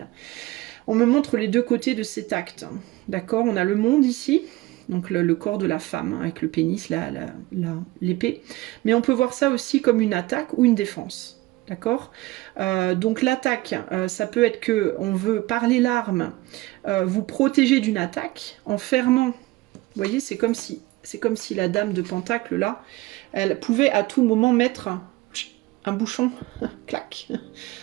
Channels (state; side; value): quieter; left; 19.7 dB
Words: On me montre les deux côtés de cet acte. D'accord? On a le monde ici, donc le corps de la femme, avec le pénis, l'épée. Mais on peut voir ça aussi comme une attaque ou une défense. D'accord? Donc l'attaque, ça peut être que on veut, par les larmes, vous protéger d'une attaque en fermant. Vous voyez, c'est comme si la dame de Pentacle, là, elle pouvait à tout moment mettre un bouchon. Clac.